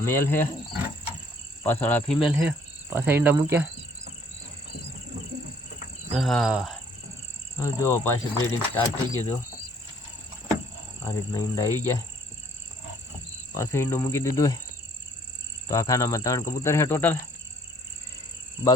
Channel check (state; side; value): normal; both; correlation 0.60